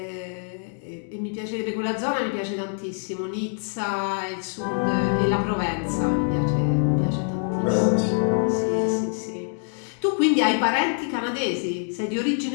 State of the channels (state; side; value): silent; right; 57 dB below the other